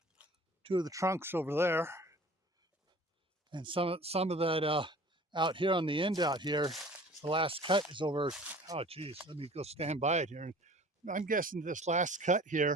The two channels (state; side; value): normal; both; correlation 0.46